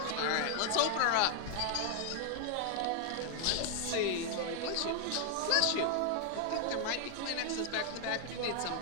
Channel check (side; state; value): both; different; correlation 0.00